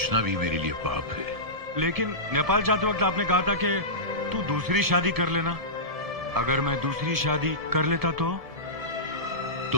भी मेरे लिए पाप है। लेकिन नेपाल जाते वक्त आपने कहा था कि तू दूसरी शादी कर लेना। अगर मैं दूसरी शादी कर लेता तो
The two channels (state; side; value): late; left; 1.7 ms